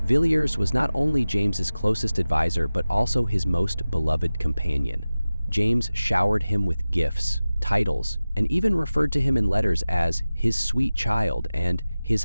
Villiers was not only James's closest advisor, but also his most beloved companion. James showered him with gifts, titles, and even referred to him in letters as his sweet child and his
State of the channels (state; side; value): inverted; both; correlation -0.97